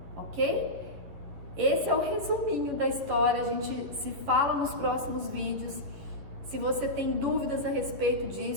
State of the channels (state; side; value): late; left; 11 ms